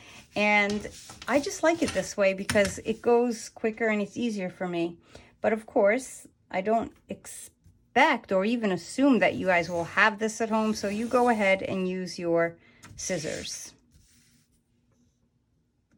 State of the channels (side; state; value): both; identical; correlation 1.00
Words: And I just like it this way because it goes quicker and it's easier for me. But of course, I don't expect or even assume that you guys will have this at home, so you go ahead and use your scissors.